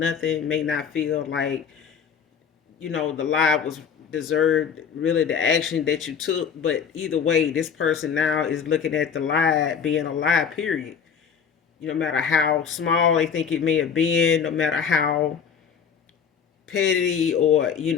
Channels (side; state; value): right; quieter; 7.0 dB